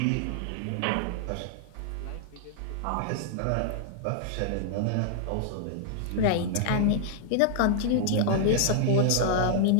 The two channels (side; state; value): both; different; correlation -0.01